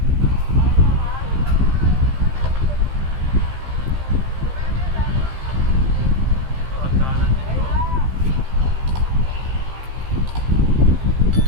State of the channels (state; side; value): late; left; 15 ms